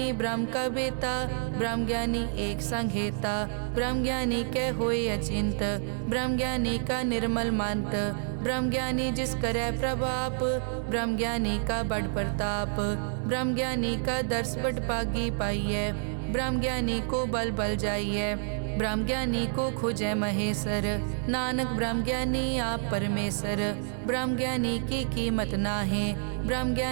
ब्रह्म का बेटा, ब्रह्म ज्ञानी एक संग हेता। ब्रह्म ज्ञानी के होए अचिंत, ब्रह्म ज्ञानी का निर्मल मंत। ब्रह्म ज्ञानी जिस करे प्रभाप, ब्रह्म ज्ञानी का बड़ प्रताप। ब्रह्म ज्ञानी का दर्श बड़ पागी पाइये, ब्रह्म ज्ञानी को बल बल जाइए। ब्रह्म ज्ञानी को खोजे महेश्वर, नानक ब्रह्म ज्ञानी आप परमेश्वर। ब्रह्म ज्ञानी की कीमत नाहे, ब्रह्म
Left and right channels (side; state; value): left; silent; 59 dB below the other